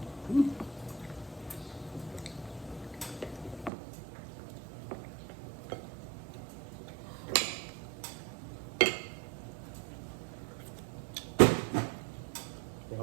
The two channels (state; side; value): drops out; left; at 3.7 s